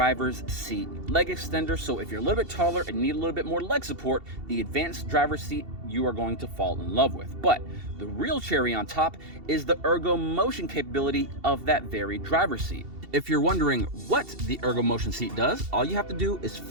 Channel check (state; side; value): late; left; 2.7 ms